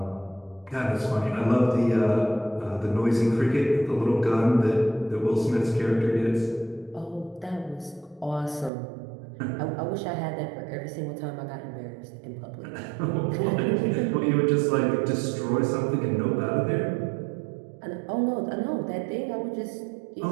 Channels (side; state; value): left; drops out; at 8.7 s